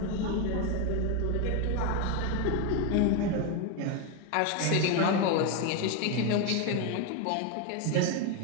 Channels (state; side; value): different; both; correlation 0.02